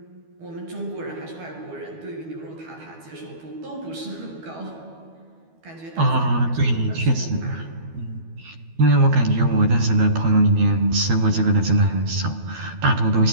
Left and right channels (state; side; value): late; left; 12 ms